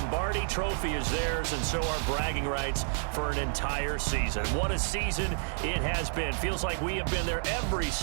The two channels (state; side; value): silent; left; digital silence